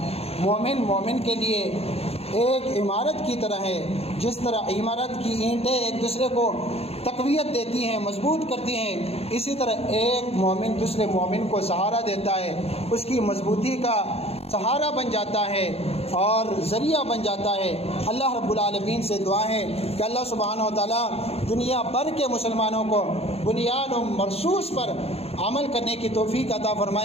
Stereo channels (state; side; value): late; right; 0.29 ms